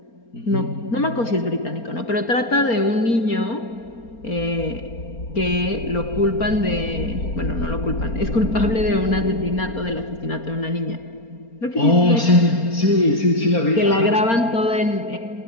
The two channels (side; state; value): right; late; 4.3 ms